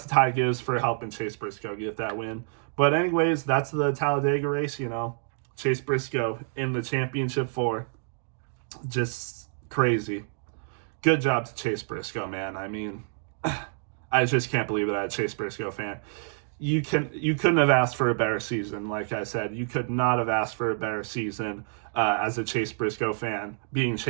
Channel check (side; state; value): left; silent; digital silence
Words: to Ty Gibbs for helping Chase Briscoe get that win. But anyways, that's the Talladega race. Chase Briscoe in the championship 4, just crazy. Good job to Chase Briscoe, man. I mean, I just can't believe that I'm a Chase Briscoe fan. You couldn't have asked for a better season. Like I said, you could not have asked for a better season as a Chase Briscoe fan, being